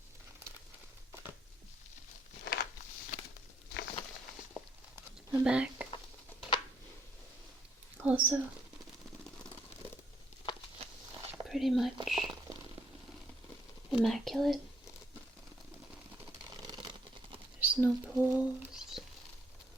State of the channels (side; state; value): both; normal; correlation 0.70